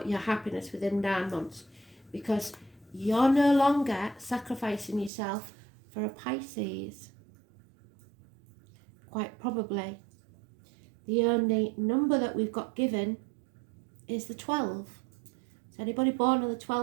your happiness within 9 months, because you're no longer sacrificing yourself for a Pisces. Quite probably. The only number that we've got given is the 12. So anybody born on the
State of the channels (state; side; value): drops out; left; at 5.1 s